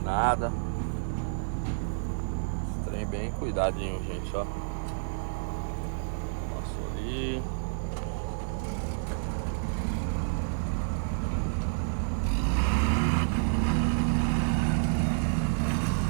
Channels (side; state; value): left; silent; 58 dB below the other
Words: nada. Os Tem bem cuidadinho, gente, ó. Passou ali.